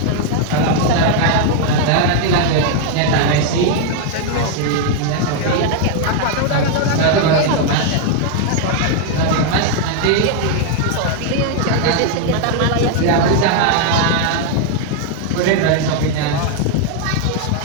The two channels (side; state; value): both; different; correlation 0.00